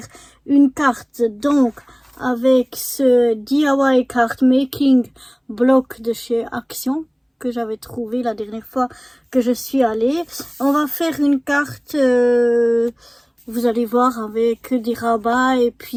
une carte donc avec ce DIY card making bloc de chez Action que j'avais trouvé la dernière fois que je suis allée. On va faire une carte, vous allez voir, avec des rabats et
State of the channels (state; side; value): identical; both; correlation 1.00